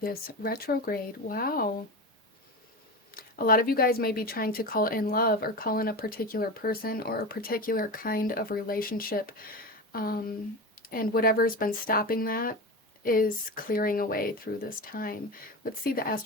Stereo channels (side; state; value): both; normal; correlation 0.24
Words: this retrograde. Wow. A lot of you guys may be trying to call in love or call in a particular person or a particular kind of relationship. And whatever's been stopping that is clearing away through this time. Let's see the